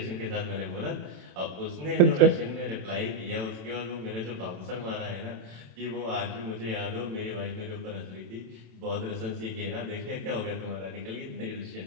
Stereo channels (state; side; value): late; left; 27 ms